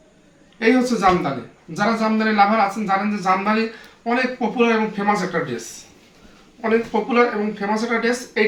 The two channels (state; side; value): identical; both; correlation 1.00